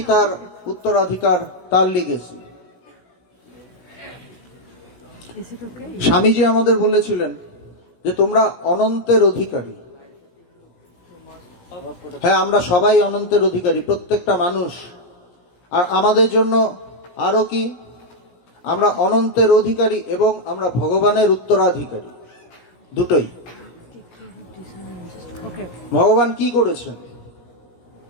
তার উত্তরাধিকার, তার লিগেসি। স্বামীজি আমাদের বলেছিলেন যে তোমরা অনন্তের অধিকারী। হ্যাঁ, আমরা সবাই অনন্তের অধিকারী, প্রত্যেকটা মানুষ। আর আমাদের জন্য আরো কি, আমরা অনন্তের অধিকারী এবং আমরা ভগবানের উত্তরাধিকারী, দুটোই। ভগবান কি করেছেন?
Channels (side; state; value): right; late; 17 ms